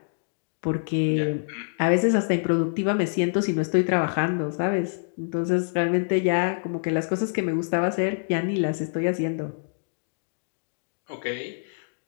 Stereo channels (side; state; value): right; silent; digital silence